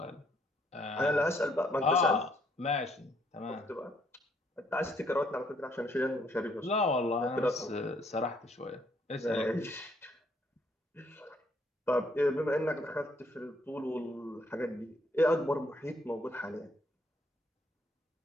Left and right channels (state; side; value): normal; both; correlation 0.69